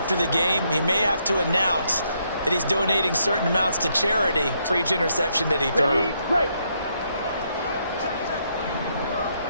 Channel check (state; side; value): inverted; both; correlation -0.75